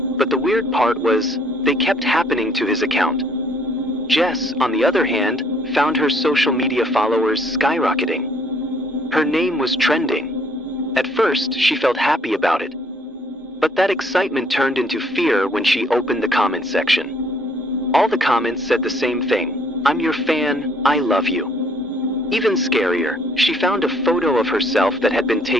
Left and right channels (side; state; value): both; normal; correlation 0.63